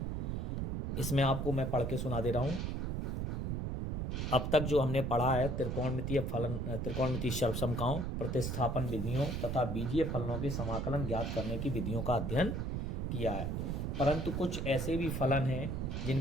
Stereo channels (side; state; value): right; noise; rumble, 1 dB below the sound